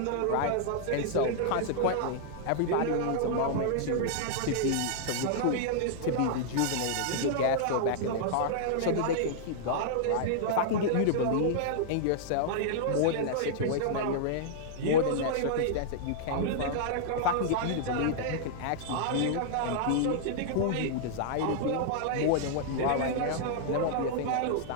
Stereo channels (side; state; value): both; different; correlation -0.01